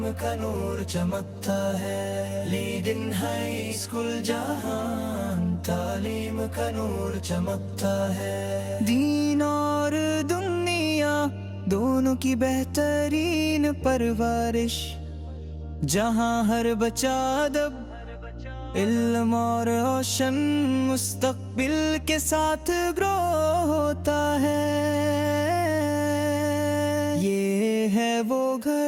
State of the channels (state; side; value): identical; both; correlation 1.00